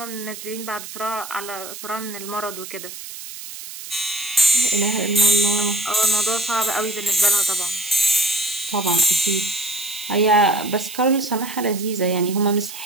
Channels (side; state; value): right; noise; hiss, 12 dB below the sound